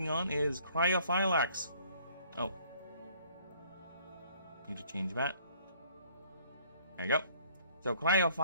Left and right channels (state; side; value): inverted; both; correlation -0.58